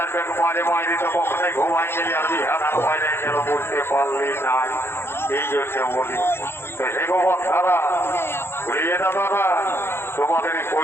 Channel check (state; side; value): late; right; 0.11 ms